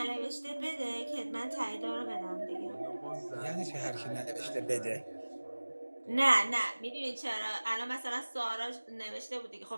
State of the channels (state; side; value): inverted; both; correlation -1.00